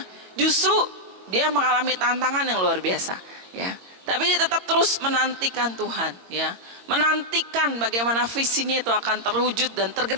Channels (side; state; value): left; late; 22 ms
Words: justru dia mengalami tantangan yang luar biasa, ya. Tapi dia tetap terus menantikan Tuhan, ya. Menantikan bagaimana visinya itu akan terwujud dan